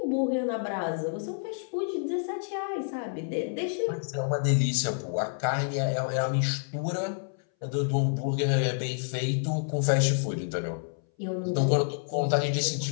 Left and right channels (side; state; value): right; silent; 59 dB below the other